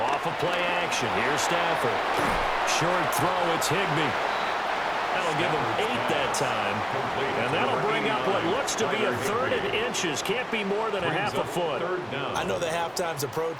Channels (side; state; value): both; identical; correlation 1.00